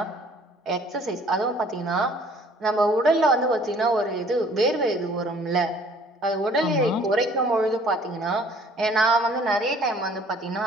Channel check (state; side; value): normal; both; correlation 0.56